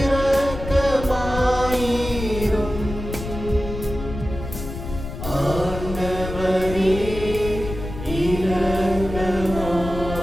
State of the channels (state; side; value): noise; left; rumble, 8 dB below the sound